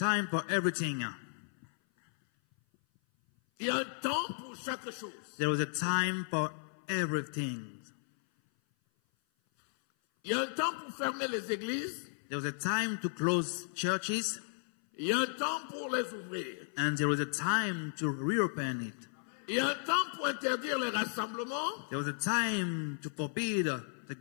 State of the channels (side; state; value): right; silent; 55 dB below the other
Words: for everything. Il y a un temps pour chaque chose. There was a time for everything. Il y a un temps pour fermer les églises. There was a time to close churches. Il y a un temps pour les ouvrir. And there was a time to reopen it. Il y a un temps pour interdire les rassemblements. There was a time to forbid the